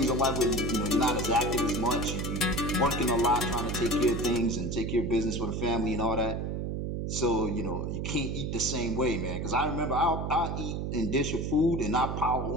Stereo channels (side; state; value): right; noise; hum, 2 dB below the sound